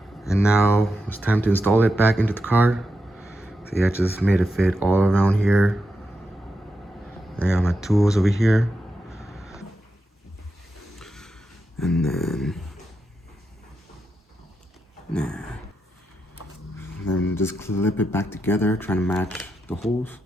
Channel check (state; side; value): normal; both; correlation 0.87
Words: And now it's time to install it back into the car. See, I just made it fit all around here. I got my tools over here. And then just clip it back together, trying to match the holes.